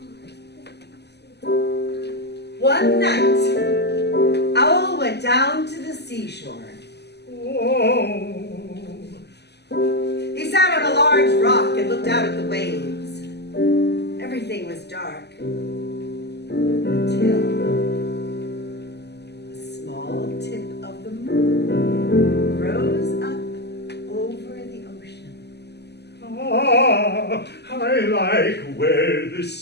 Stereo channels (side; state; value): right; late; 0.49 ms